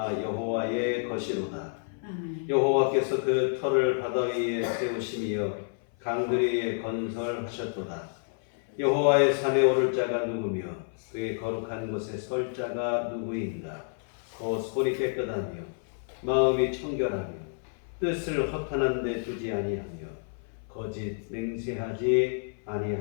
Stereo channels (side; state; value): right; silent; 56 dB below the other